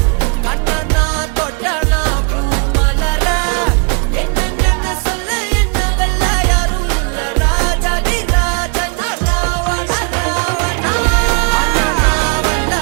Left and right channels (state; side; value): quieter; left; 34.8 dB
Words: கண்ணனா தொட்டனா பூமலற என்ன சொல்ல என்ன வெல்ல யாரும் இல்ல ராஜாதி ராஜனா ராவண ராவணா